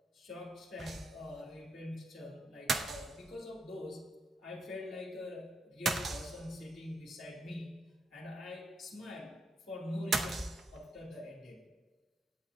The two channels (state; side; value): normal; both; correlation 0.79